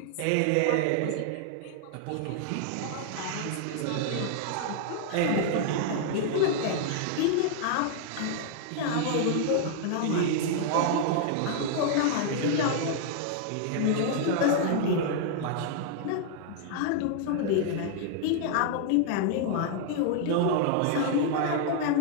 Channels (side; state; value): both; different; correlation 0.00